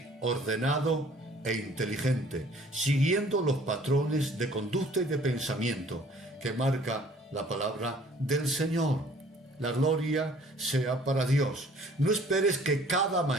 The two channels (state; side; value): normal; both; correlation 0.55